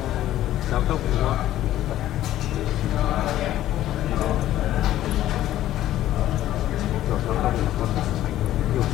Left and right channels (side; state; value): right; quieter; 13.4 dB